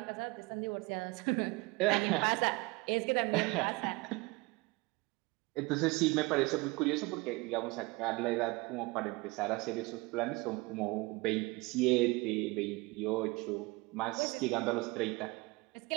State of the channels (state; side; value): quieter; left; 24.4 dB